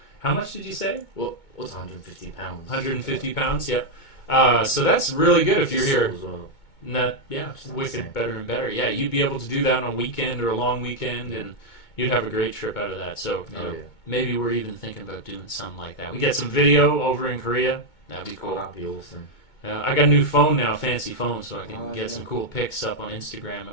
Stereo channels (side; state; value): right; late; 2.2 ms